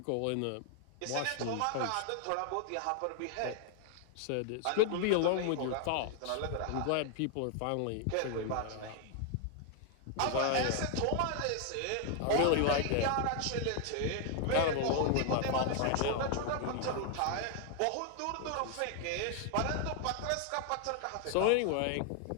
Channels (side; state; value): both; different; correlation 0.00